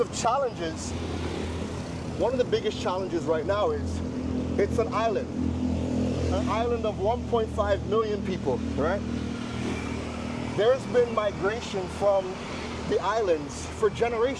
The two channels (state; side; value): identical; both; correlation 1.00